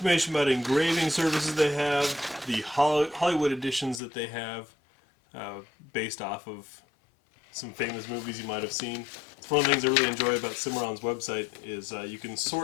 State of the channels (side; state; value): right; drops out; at 4.0 s